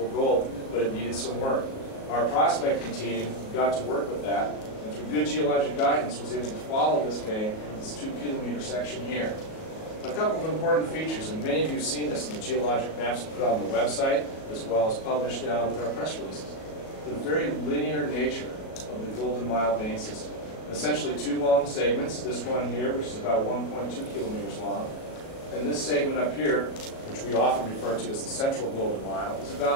gold, but it needed some work. Our prospecting team got to work with that, and through good geologic guidance was able to follow this vein, this 2 kilometer section here. A couple of important features, and many of you have seen this in the geologic maps put on the website, as well as published with our press releases. The very linear nature of the Golden Mile vein system. Essentially 2 long segments, this one here, which is about 1.2 kilometers long, and this segment up here, which we often refer to as the Central Golden Mile, is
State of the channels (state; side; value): late; right; 37 ms